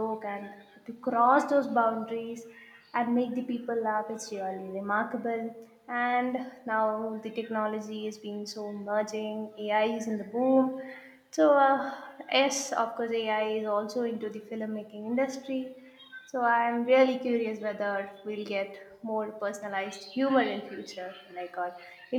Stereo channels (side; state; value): both; identical; correlation 1.00